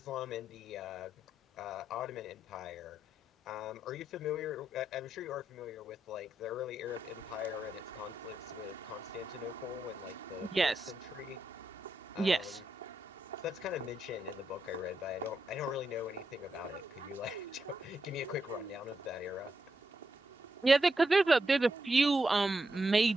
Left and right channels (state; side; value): normal; both; correlation 0.83